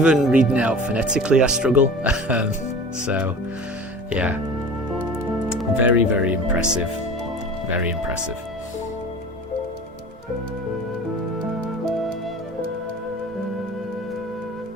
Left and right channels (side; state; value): both; normal; correlation 0.39